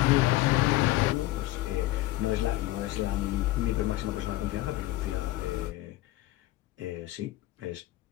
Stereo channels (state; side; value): quieter; right; 17.1 dB